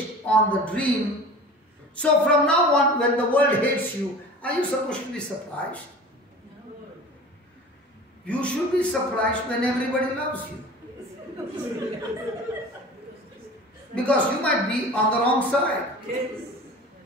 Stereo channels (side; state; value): both; normal; correlation 0.39